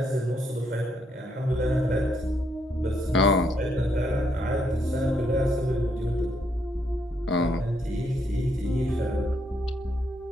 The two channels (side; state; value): both; normal; correlation 0.75